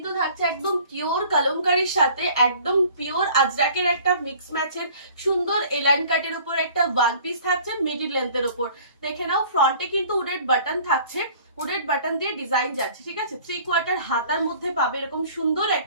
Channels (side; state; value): both; inverted; correlation -0.50